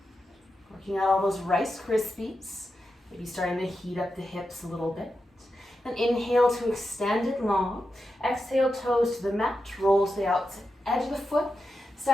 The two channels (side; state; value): both; normal; correlation 0.89